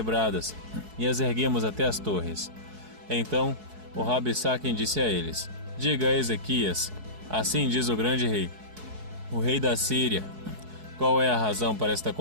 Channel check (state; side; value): late; left; 4.7 ms